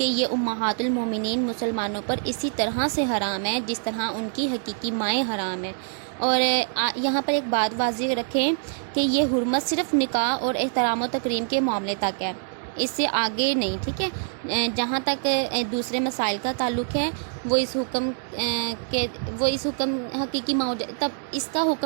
یہ امہات المومنین مسلمانوں پر اسی طرح سے حرام ہے جس طرح ان کی حقیقی مائیں حرام ہیں۔ اور یہاں پر ایک بات واضح رکھیں کہ یہ حرمت صرف نکاح اور احترام و تکریم کے معاملے تک ہے، اس سے آگے نہیں۔ ٹھیک ہے، جہاں تک دوسرے مسائل کا تعلق ہے وہ اس حکم حقیقی ماؤ، تب اس کا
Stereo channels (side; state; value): left; silent; digital silence